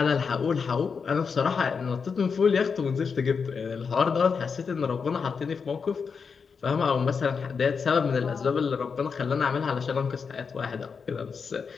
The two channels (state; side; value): quieter; right; 5.7 dB